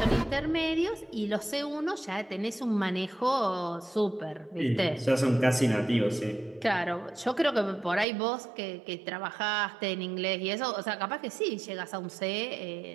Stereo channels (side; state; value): left; drops out; at 8.1 s